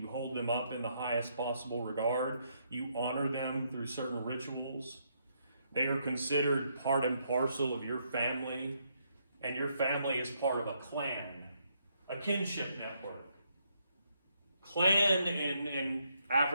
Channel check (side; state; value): both; inverted; correlation -0.75